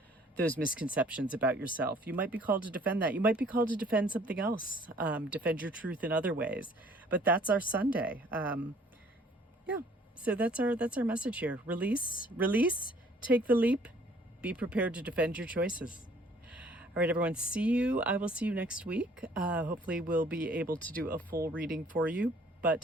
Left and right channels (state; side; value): normal; both; correlation 0.57